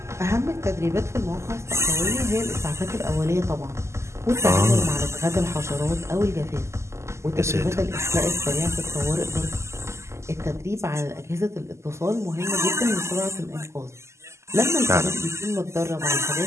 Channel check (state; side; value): late; left; 0.13 ms